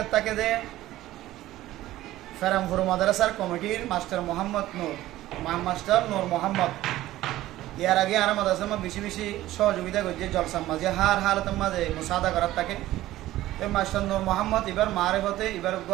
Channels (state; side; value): quieter; left; 15.4 dB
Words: তাকে দে ফেরামপুর মাদ্রাসার কমিটির মাস্টার নূর মোহাম্মদ ইয়ার আগে আর মাদ্রাসার বেশি বেশি সহযোগিতা করছে জলসার মাঝে হার হালতের মাঝে মুসাদা করার তাকে মাস্টার নূর মোহাম্মদ এবার মারেফতে এবার